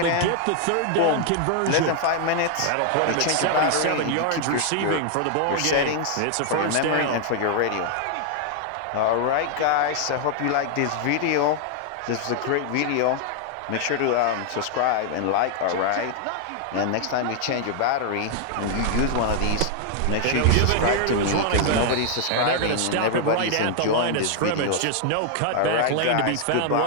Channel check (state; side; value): different; both; correlation 0.00